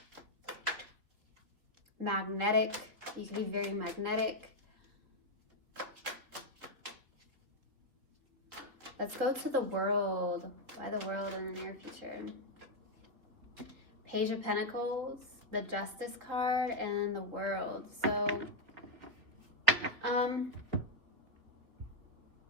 Magnetic. You can be very magnetic. Let's go to the World. Why the World in the near future? Page of Pentacles, the Justice card, and the World. So,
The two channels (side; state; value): left; late; 3.6 ms